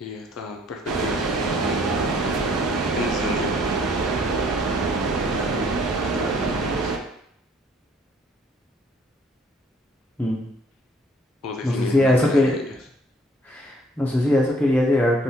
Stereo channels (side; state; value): both; normal; correlation 0.60